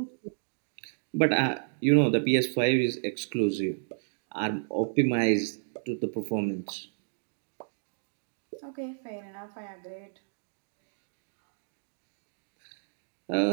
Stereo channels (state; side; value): silent; left; digital silence